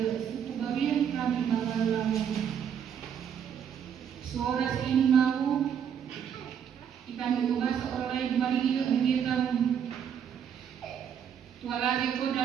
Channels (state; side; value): quieter; left; 8.3 dB